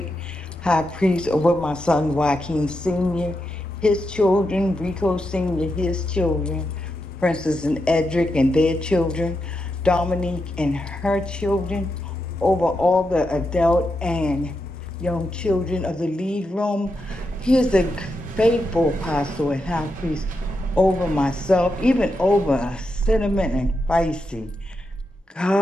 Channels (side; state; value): both; normal; correlation 0.85